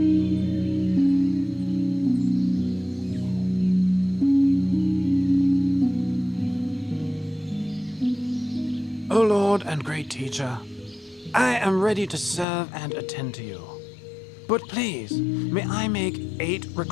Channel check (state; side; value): drops out; right; at 12.5 s